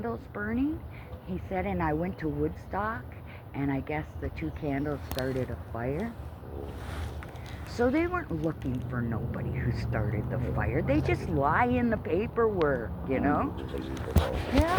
burning. He said, and I went to Woodstock, and I guess the 2 candles started a fire. So they weren't looking for nobody who started the fire. They just lie in the paperwork, you know?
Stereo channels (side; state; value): both; identical; correlation 1.00